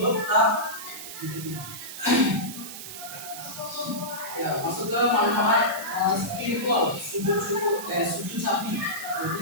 tetap diterima. Ya, masuk ke manfaat spiritual sujud sahwi.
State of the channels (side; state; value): right; noise; hiss, 10 dB below the sound